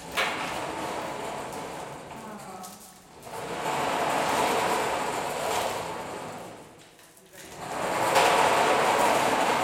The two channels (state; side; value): identical; both; correlation 1.00